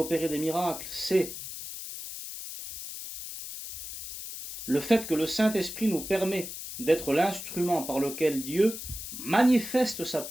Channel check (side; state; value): left; noise; hiss, 9 dB below the sound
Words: des miracles, c'est le fait que le Saint-Esprit nous permet d'être l'instrument par lequel Dieu manifeste sa